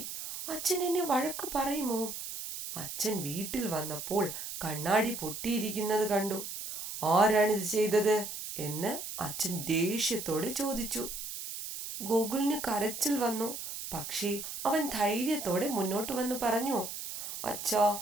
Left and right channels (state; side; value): noise; right; hiss, 7 dB below the sound